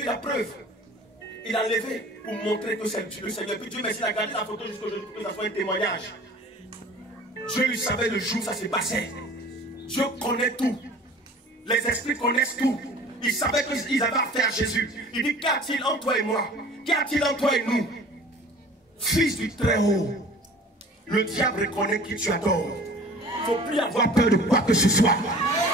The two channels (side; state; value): both; normal; correlation 0.45